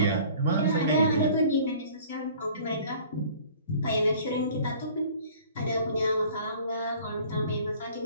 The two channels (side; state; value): both; inverted; correlation -0.50